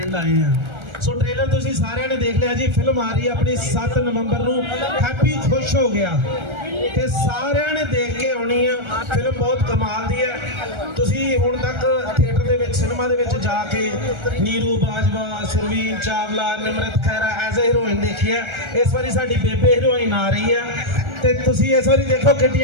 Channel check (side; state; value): left; late; 1.3 ms